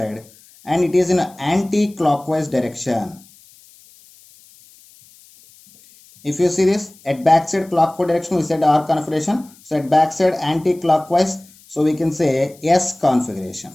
it is in an anti-clockwise direction. If you see this at backside clockwise direction, we said R configuration. So at backside anti-clockwise, so we can say S configuration.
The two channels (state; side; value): noise; left; hiss, 26 dB below the sound